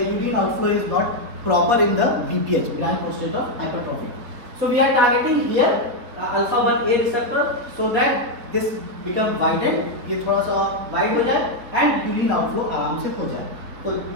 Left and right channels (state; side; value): late; left; 4.1 ms